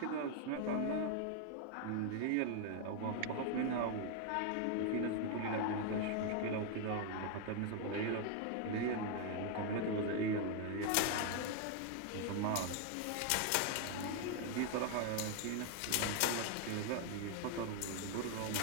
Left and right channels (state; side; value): different; both; correlation 0.00